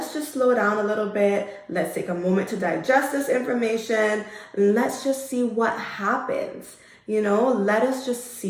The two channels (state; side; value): identical; both; correlation 1.00